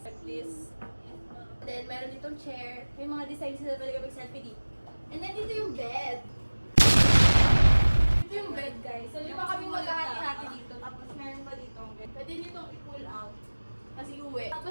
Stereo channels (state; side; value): inverted; both; correlation -1.00